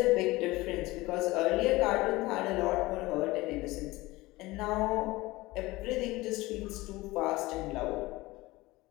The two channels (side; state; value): right; quieter; 20.2 dB